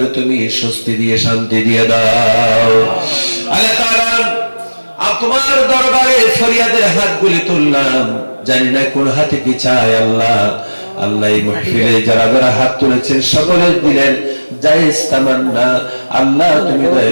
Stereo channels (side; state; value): both; inverted; correlation -1.00